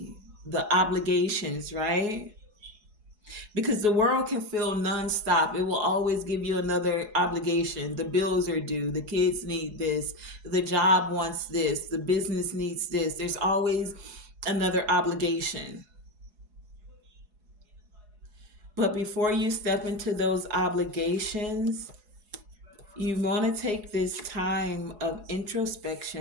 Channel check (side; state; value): left; late; 4.8 ms